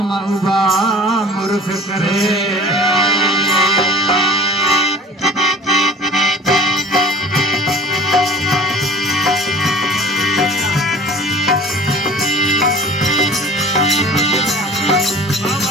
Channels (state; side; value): normal; both; correlation 0.45